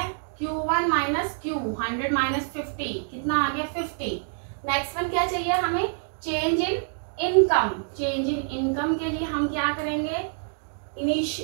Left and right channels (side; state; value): left; silent; digital silence